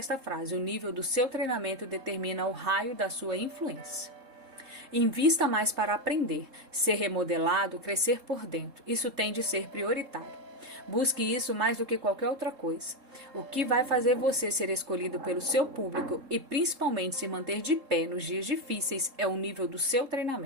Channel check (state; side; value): late; left; 3.7 ms